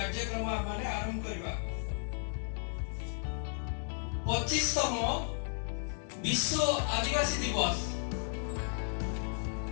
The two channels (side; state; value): right; silent; 55 dB below the other